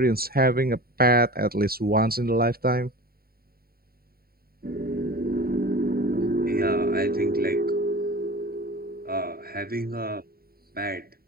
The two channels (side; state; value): left; late; 0.44 ms